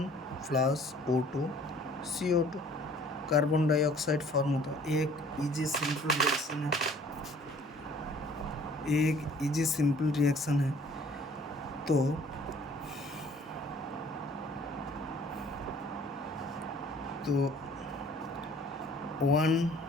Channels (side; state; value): both; normal; correlation 0.53